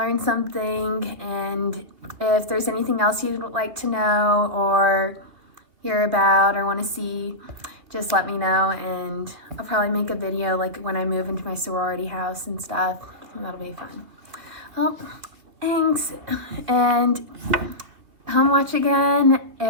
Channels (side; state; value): left; late; 2.8 ms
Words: something. And if there's anything else you'd like to know or hear about or want to see, just let me know, and I'll probably make a video like when I move into my sorority house and stuff. That'll be fun. Well, thanks, and home watch again,